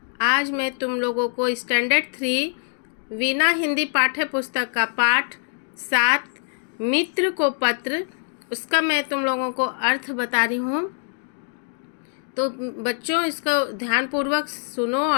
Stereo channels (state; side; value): silent; right; digital silence